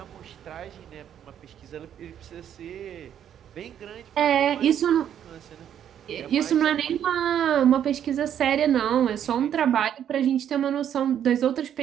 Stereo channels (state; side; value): quieter; left; 9.7 dB